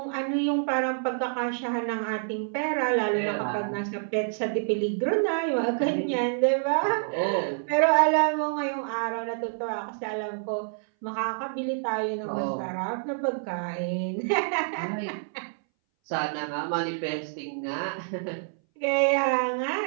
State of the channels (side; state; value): left; silent; 59 dB below the other